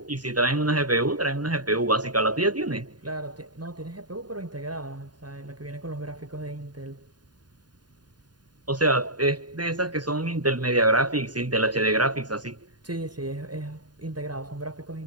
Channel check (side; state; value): left; late; 0.70 ms